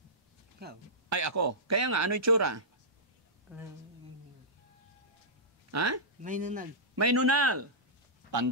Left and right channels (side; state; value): both; normal; correlation -0.15